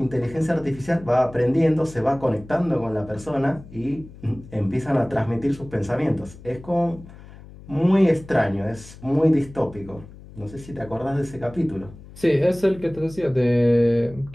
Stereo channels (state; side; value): noise; left; hum, 18 dB below the sound